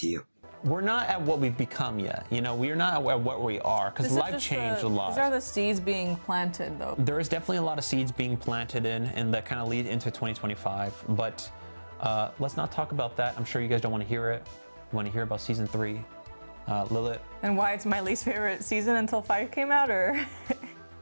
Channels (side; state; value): both; inverted; correlation -1.00